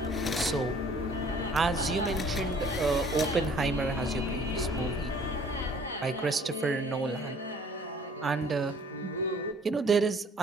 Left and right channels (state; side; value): normal; both; correlation 0.55